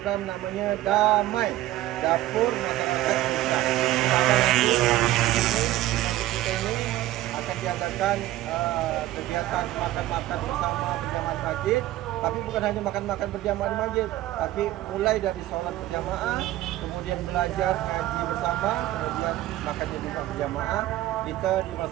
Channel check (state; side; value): quieter; left; 15.2 dB